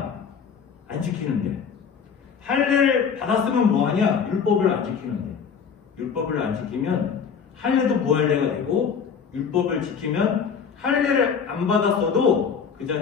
안 지키는데. 할례를 받았으면 뭐하냐? 율법을 안 지키는데. 율법을 안 지키면 할례도 무할례가 되고, 율법을 지키면 할례를 안 받았어도 그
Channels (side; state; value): right; quieter; 6.6 dB